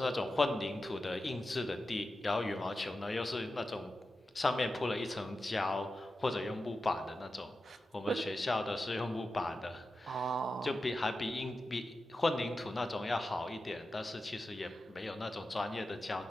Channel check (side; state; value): both; normal; correlation 0.92